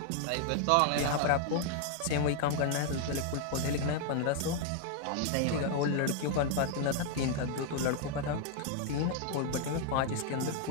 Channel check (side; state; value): both; different; correlation 0.00